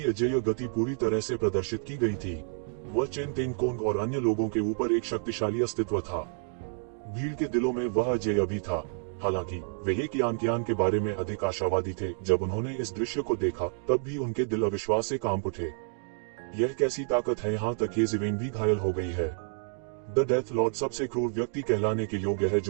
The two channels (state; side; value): silent; left; 58 dB below the other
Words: अजेय गति पूरी तरह से प्रदर्शित की गई थी। वह चेन तेंगकोंग और अन्य लोगों के ऊपर एक शक्तिशाली अस्तित्व था। भीड़ के दिलों में वह अजेय भी था। हालांकि वे ये कियान के बारे में अधिक आशावादी थे। जब उन्होंने इस दृश्य को देखा तब भी उनके दिल अविश्वास से कांप उठे। यह कैसी ताकत है। यहाँ तक येशिवेन भी घायल हो गई है। द डेथ लॉर्ड सबसे क्रूर व्यक्ति कहलाने के योग्य है